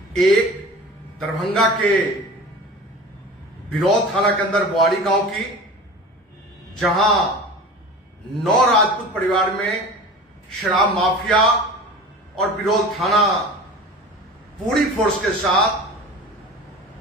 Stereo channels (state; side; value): normal; both; correlation 0.37